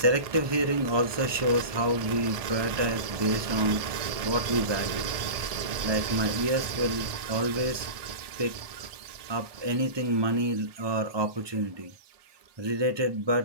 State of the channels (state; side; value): late; left; 1.2 ms